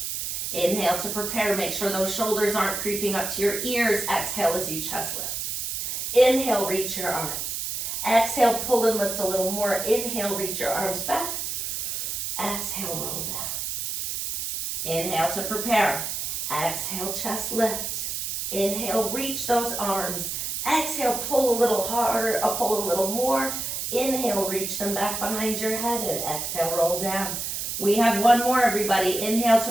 Inhale to prepare. Make sure those shoulders aren't creeping up to your ears. Exhale as you chest lift. Inhale, reach your arms. Exhale, pull and lift a little more. Inhale, reach your arms back. Exhale, roll down. Inhale to prepare. Exhale, chest lift. Inhale, reach those arms. Exhale, pull a little harder, pull a little more. Inhale, reach them back behind your head, and exhale, roll down. We have one more, everybody. Inhale to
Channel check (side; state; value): right; noise; hiss, 3 dB below the sound